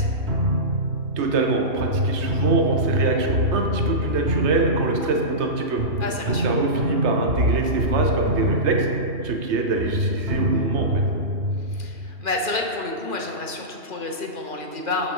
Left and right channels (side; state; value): left; late; 2.4 ms